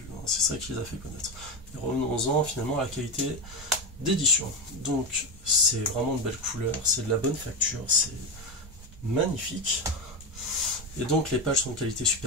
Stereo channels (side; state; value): right; noise; rumble, 17 dB below the sound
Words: Hein. C'est ça qui les a fait connaître. Et revenons-en finalement à la qualité d'édition. Donc, c'est vraiment de belles couleurs, c'est de la bonne facture, c'est magnifique. Et donc, les pages sont de qualité